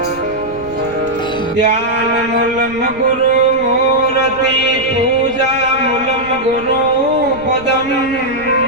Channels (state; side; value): noise; right; rumble, 19 dB below the sound